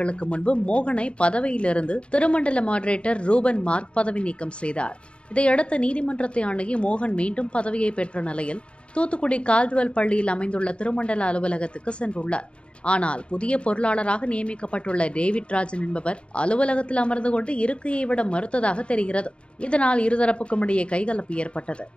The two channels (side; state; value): right; late; 0.057 ms